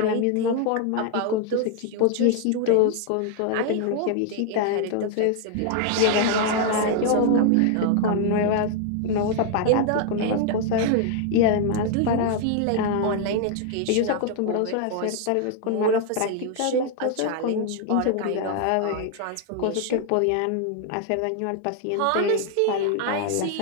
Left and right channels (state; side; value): different; both; correlation 0.00